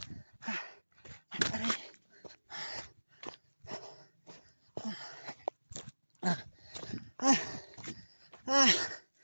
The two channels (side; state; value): both; inverted; correlation -1.00